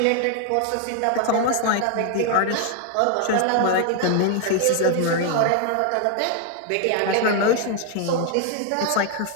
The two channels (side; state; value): both; different; correlation 0.00